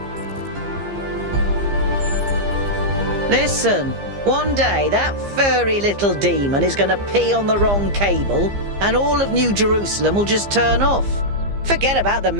Listen, one day that furry little demon is going to pee on the wrong cable and all of New Jerusalem will just turn off. Forget about the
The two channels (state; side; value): late; left; 15 ms